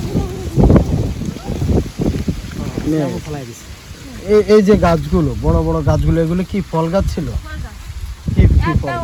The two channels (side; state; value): both; identical; correlation 1.00